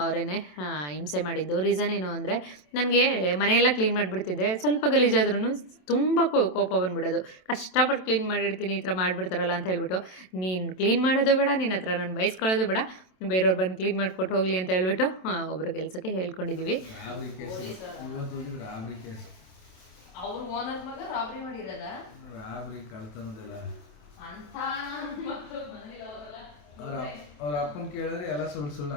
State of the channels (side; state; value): right; late; 27 ms